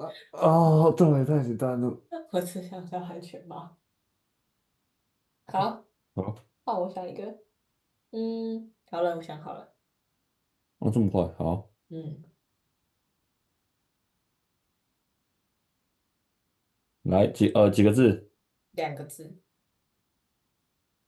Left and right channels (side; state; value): both; identical; correlation 1.00